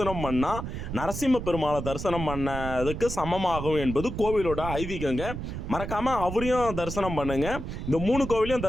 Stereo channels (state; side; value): noise; right; rumble, 6 dB below the sound